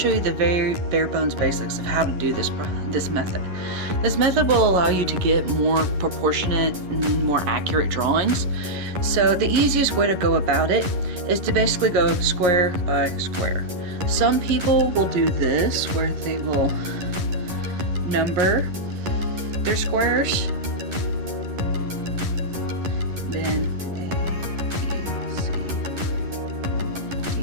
you the very bare bones basics of how to do this method. This method will allow you to get more proportionate and more accurate drawings. So the easiest way to go about it is to basically go square by square. Some people will do this where they will number their squares, then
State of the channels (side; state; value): left; late; 11 ms